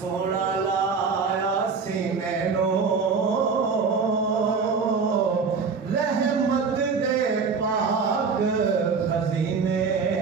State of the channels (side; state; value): left; quieter; 5.2 dB